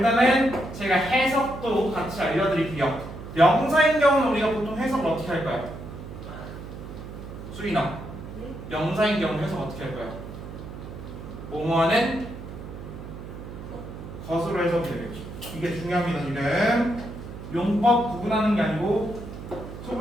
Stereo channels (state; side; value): noise; right; hum, 11 dB below the sound